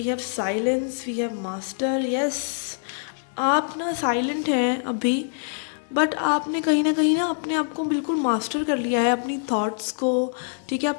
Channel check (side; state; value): right; silent; digital silence